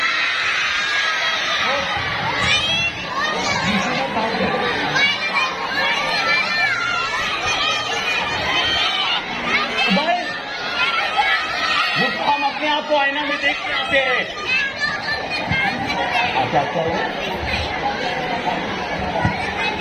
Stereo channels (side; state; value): both; identical; correlation 1.00